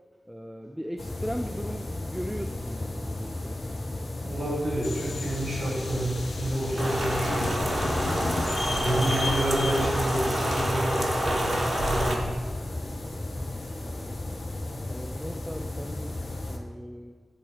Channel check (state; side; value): normal; both; correlation 0.92